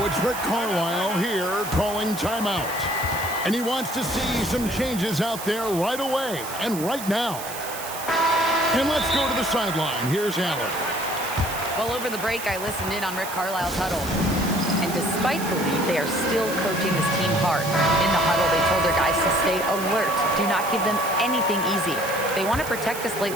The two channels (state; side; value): noise; right; hiss, 10 dB below the sound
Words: it's Rick Carlisle here calling timeout. And he wants to see some changes out there right away and right now. And let's go to the sideline. Here's Allen. Well, over the break, I listened in on Rick Carlisle's huddle. And despite the lead, they are still coaching this team hard. In the huddle, they told their guys to stay alert. Do not give them anything easy. They want to protect this late